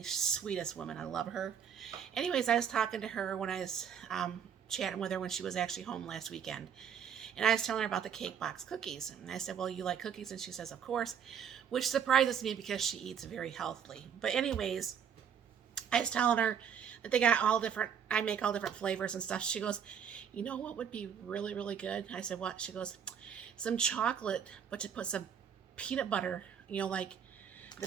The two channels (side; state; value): left; quieter; 7.9 dB